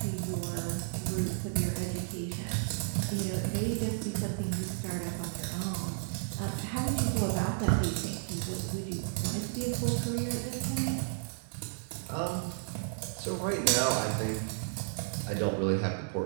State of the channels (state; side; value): silent; left; digital silence